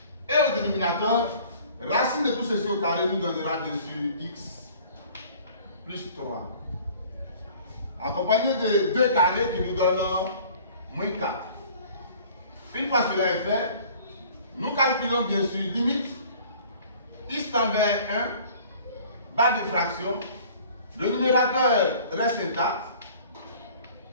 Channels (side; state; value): both; inverted; correlation -0.50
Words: Et au dénominateur, racine de tout ceci au carré nous donnera dessus x plus 3. Accompagné de 2 carrés qui nous donnent moins 4. Une fois cela est fait, nous calculons bien sûr limite x tend vers 1, barre de fraction. Le numérateur reste intact.